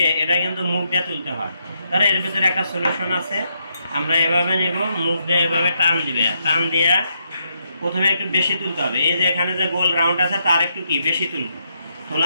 এটা কিন্তু মুখ দিয়ে তুলতে হয়। তাহলে এর ভিতরে একটা সলিউশন আছে, আমরা এভাবে নেব, মুখ দিয়ে এভাবে টান দিবে, টান দিয়ে প্রথমে একটু বেশি তুলতে হবে। এই যে এখানে যে গোল রাউন্ড আছে তার একটু কি বেশি তুলব।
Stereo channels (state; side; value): inverted; both; correlation -0.78